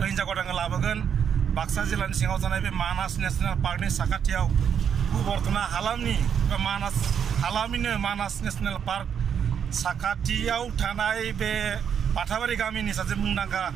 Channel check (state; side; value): quieter; left; 7.9 dB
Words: हिन्जाव गोदानखौ लाबोगोन बाक्सा जिल्लानि सिङाव थानाय बे मानास नेसनेल पार्कनि साखाथियाव बर्थना हालामनि बा मानास हालामनिनो मानास नेसनेल पार्क साखाथियाव थानाय बे बाथाबारि गामिनि सासे मुंदांखा